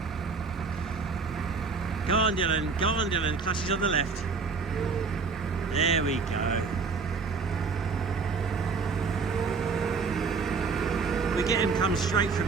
Go on, Dylan. Go on, Dylan. Clutches on the left. There we go. We get him come straight from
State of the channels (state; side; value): quieter; left; 4.8 dB